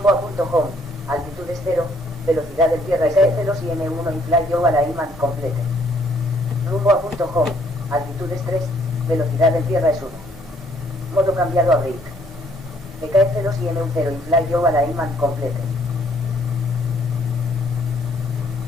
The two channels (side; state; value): both; normal; correlation 0.65